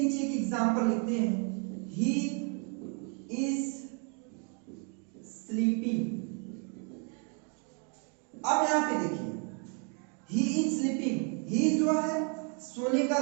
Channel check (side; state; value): left; quieter; 38.7 dB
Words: एक एग्जांपल लिखते हैं, ही इज स्लीपिंग। अब यहां पे देखिए, ही इज स्लीपिंग, ही जो है सोने का